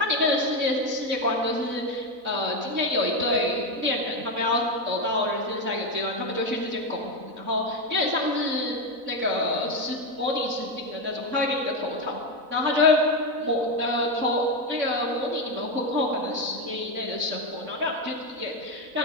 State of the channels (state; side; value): late; left; 4.0 ms